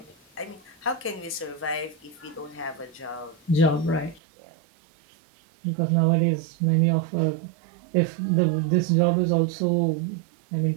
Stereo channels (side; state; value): left; drops out; at 4.2 s